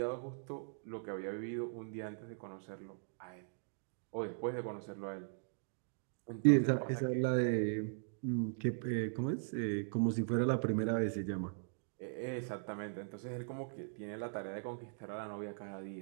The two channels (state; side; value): silent; left; digital silence